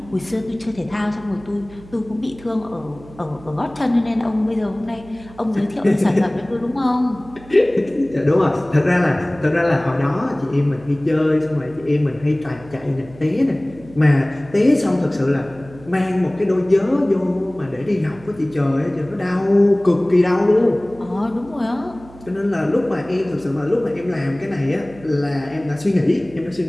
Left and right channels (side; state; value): right; noise; hum, 20 dB below the sound